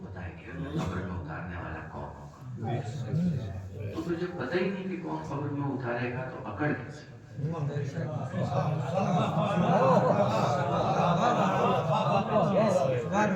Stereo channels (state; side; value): identical; both; correlation 1.00